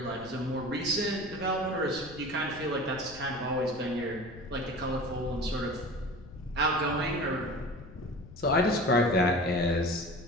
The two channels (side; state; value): left; noise; rumble, 17 dB below the sound